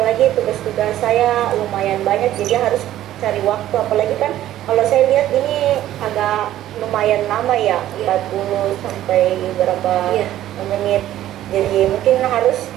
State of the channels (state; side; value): quieter; left; 13.1 dB